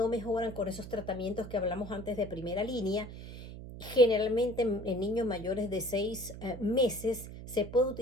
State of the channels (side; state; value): right; noise; hum, 12 dB below the sound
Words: mejoran con esos tratamientos que hablamos antes de primera línea. Generalmente en niños mayores de 6 meses se puede